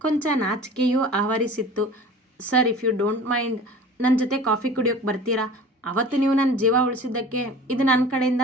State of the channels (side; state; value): both; normal; correlation 0.41